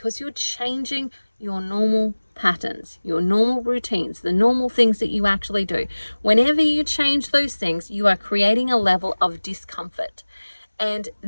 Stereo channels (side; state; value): both; inverted; correlation -1.00